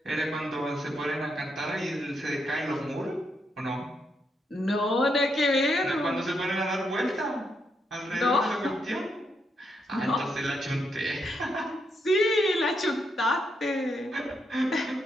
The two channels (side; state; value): both; normal; correlation 0.80